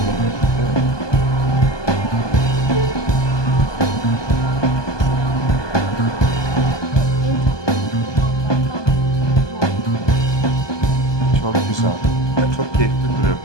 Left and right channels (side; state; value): right; late; 1.2 ms